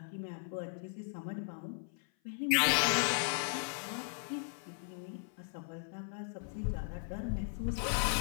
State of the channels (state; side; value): silent; right; 53 dB below the other